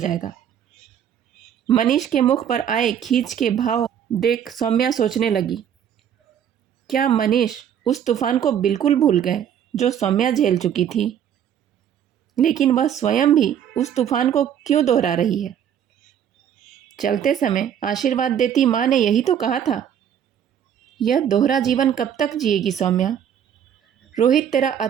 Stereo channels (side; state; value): left; quieter; 9.2 dB